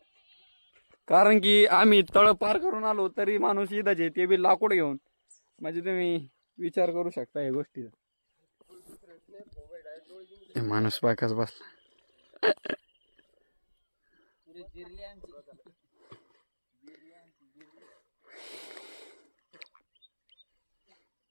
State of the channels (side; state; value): both; inverted; correlation -1.00